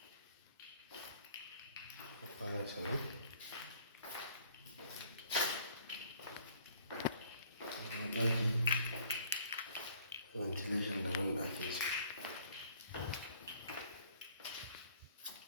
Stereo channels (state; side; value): inverted; both; correlation -0.59